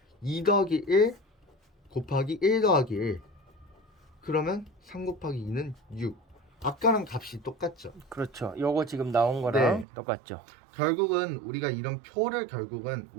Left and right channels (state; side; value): drops out; left; at 9.9 s